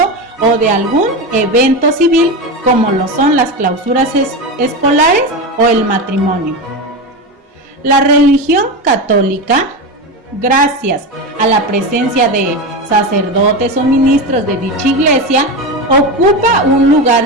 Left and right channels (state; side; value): normal; both; correlation 0.19